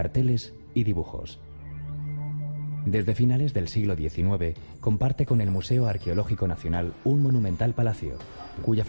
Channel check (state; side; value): inverted; both; correlation -1.00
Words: y dibujos. Desde finales del siglo XIX, comparte con el Museo Arqueológico Nacional un monumental palacio, cuya